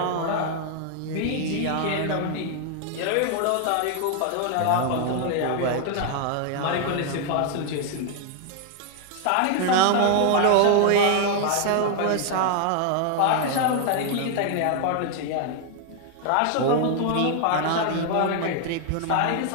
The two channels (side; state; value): both; different; correlation 0.00